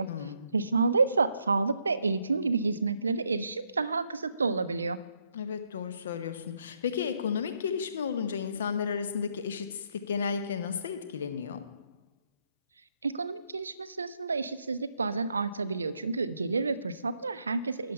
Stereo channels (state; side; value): inverted; both; correlation -0.74